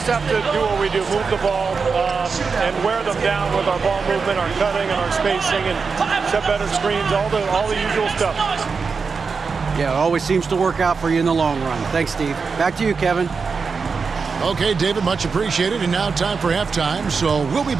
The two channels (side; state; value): left; quieter; 5.1 dB